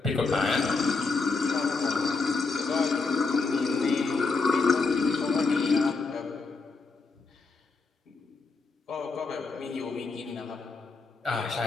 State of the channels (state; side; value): quieter; right; 4.1 dB